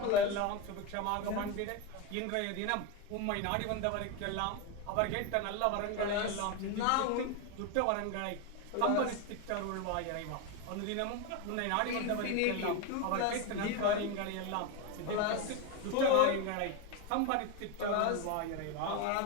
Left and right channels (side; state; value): both; different; correlation 0.03